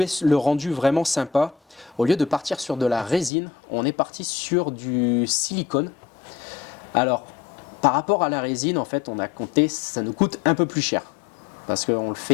le rendu vraiment sympa. Au lieu de partir sur de la résine, on est parti sur du silicone. Alors, par rapport à la résine, en fait, on a compté, ça nous coûte un peu plus cher. Parce qu'on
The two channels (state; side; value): drops out; right; at 3.3 s